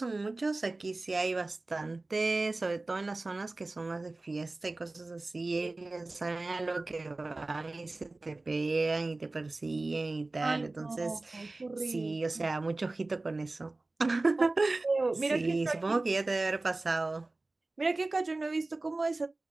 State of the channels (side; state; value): left; quieter; 3.1 dB